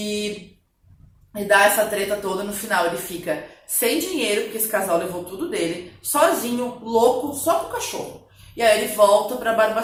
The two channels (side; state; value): both; identical; correlation 1.00